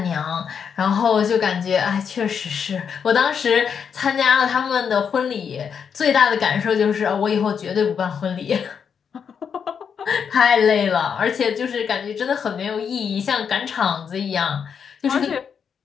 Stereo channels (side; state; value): right; quieter; 7.0 dB